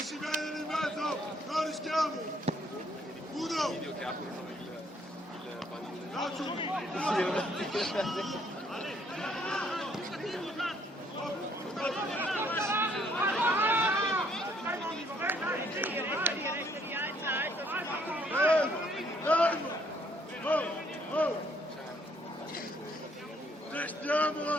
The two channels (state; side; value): normal; both; correlation 0.66